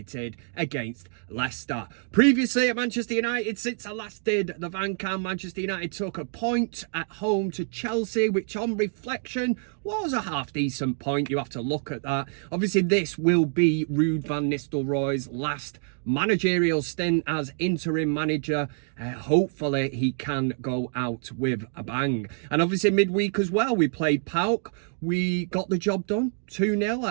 against Leicester. Previously at Manchester United, since I last did the Van Cam, Manchester United took a point at home to Chelsea, which on reflection was a half-decent point. You have to look at that. Obviously, this will be Ruud van Nistelrooy's last managerial stint as interim manager. Hopefully he can go out with a bang. And obviously midweek as well, we played PAOK. We got the job done, 2-0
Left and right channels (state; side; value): silent; left; 56 dB below the other